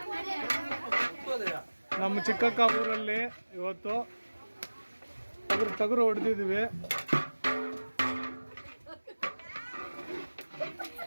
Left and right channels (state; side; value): inverted; both; correlation -1.00